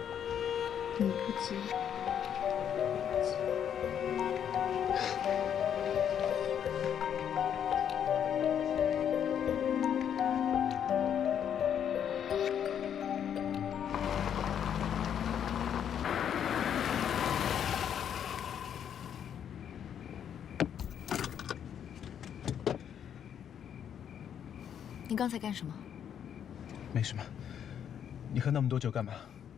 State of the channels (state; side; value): quieter; right; 8.9 dB